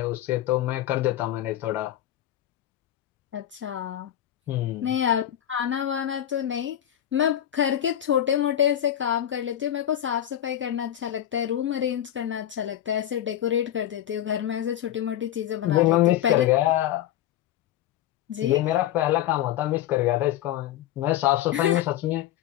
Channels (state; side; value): quieter; right; 11.7 dB